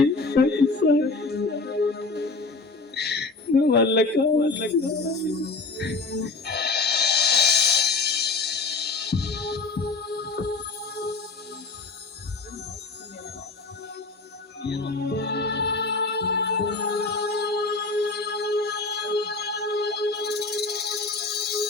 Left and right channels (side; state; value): right; quieter; 3.8 dB